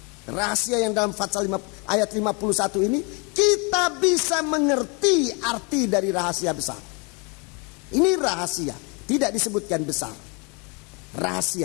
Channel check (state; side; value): quieter; right; 32.1 dB